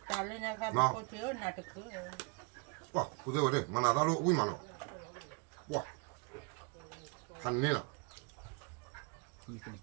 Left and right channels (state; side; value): quieter; left; 32.5 dB